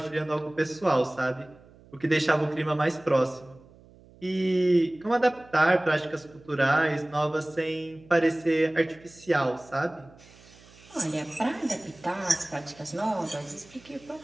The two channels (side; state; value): right; noise; hum, 25 dB below the sound